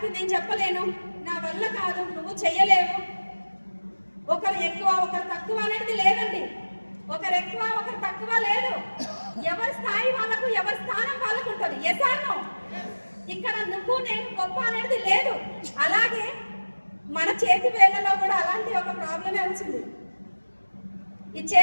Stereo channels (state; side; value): inverted; both; correlation -1.00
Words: నేను చెప్పలేను, నా వల్ల కాదు, నువ్వు చెయ్యలేవు, ఒకరు ఎక్కువ ఒకరు తక్కువ అనేది లేదండి. ఒకరు ఎక్కువ ఒకరు తక్కువ లేదు, ఎవరి స్థాయి వాళ్ళకు, ఎవరి స్థానం వాళ్ళకు ఉంటుంది. Yes or no? ఇక్కడ నువ్వు నేను గొప్ప అనేది లేదు. అలాగే మన చేతి వేళ్లలో కూడా అలాంటి ఒక ప్రాబ్లమే వచ్చింది. ఈ